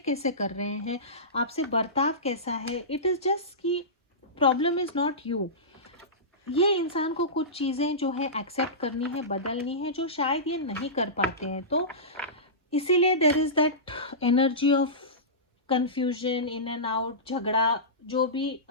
कैसे कर रहे हैं, आपसे बर्ताव कैसा है, इट इज जस्ट कि प्रॉब्लम इज नॉट यू। ये इंसान को कुछ चीज़ें जो है एक्सेप्ट करनी है, बदलनी है, जो शायद ये नहीं कर पाते हैं। तो इसीलिए there is that energy of confusion, in and out, झगड़ा, जो भी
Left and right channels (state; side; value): normal; both; correlation -0.19